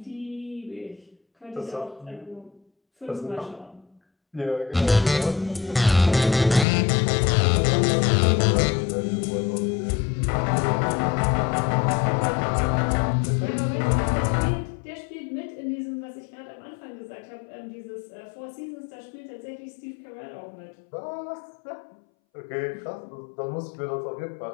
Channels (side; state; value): right; drops out; at 6.7 s